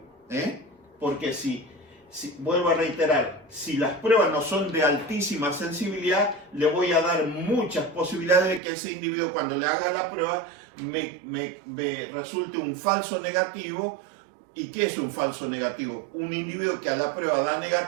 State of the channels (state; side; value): drops out; left; at 8.6 s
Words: Porque vuelvo a reiterar, si las pruebas no son de altísima sensibilidad, le voy a dar muchas posibilidades de que ese individuo, cuando le haga la prueba, me resulte un falso negativo. ¿Y qué es un falso negativo? Un individuo que a la prueba da